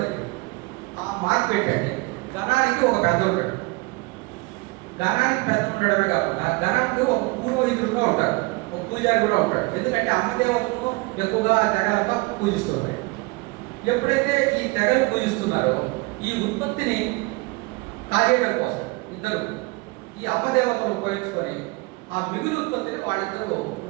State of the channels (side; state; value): left; quieter; 25.5 dB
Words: జరిగింది. ఆ మార్పు పెట్టండి, ఘనానికి ఒక పెద్ద ఉంటాడు. ఘనానికి పెద్ద ఉండడమే కాకుండా ఘనానికి ఒక పురోహితుడు కూడా ఉంటాడు, ఒక పూజారి కూడా ఉంటాడు. ఎందుకంటే అమ్మదేవతను ఎక్కువగా ఆ తెగలంతా పూజిస్తున్నారు. ఎప్పుడైతే ఈ తెగలు పూజిస్తున్నారో ఈ ఉత్పత్తిని కాజేయడం కోసం ఇద్దరు ఈ అమ్మదేవతను ఉపయోగించుకొని ఆ మిగులు ఉత్పత్తిని వాళ్ళిద్దరూ